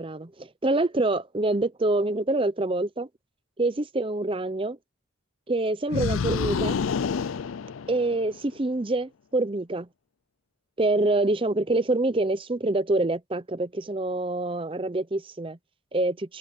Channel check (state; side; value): normal; both; correlation 0.50